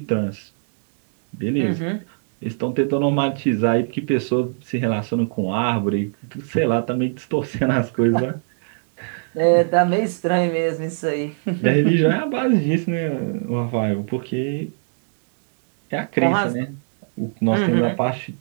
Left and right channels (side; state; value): left; silent; digital silence